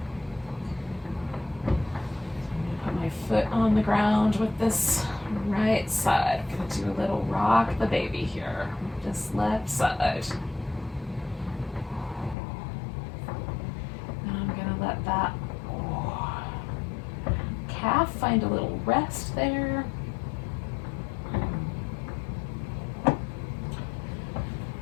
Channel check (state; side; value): drops out; right; at 12.4 s